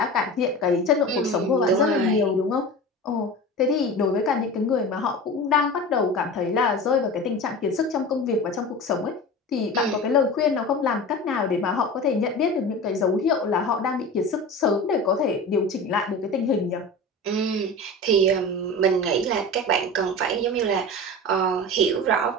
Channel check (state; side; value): normal; both; correlation 0.32